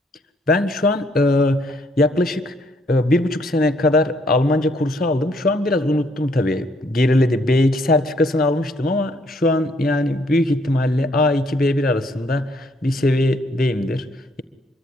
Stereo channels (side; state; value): both; normal; correlation 0.68